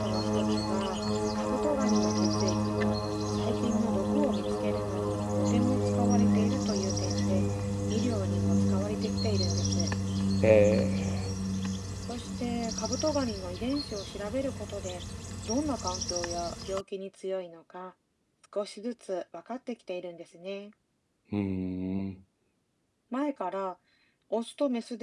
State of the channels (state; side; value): identical; both; correlation 1.00